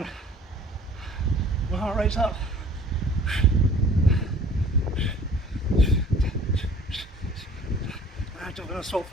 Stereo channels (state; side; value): normal; both; correlation 0.51